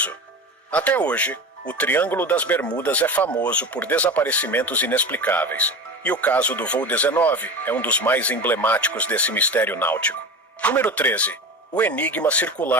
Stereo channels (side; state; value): both; normal; correlation 0.28